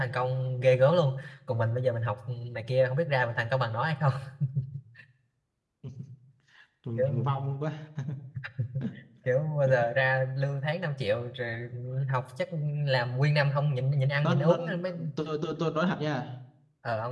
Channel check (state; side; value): identical; both; correlation 1.00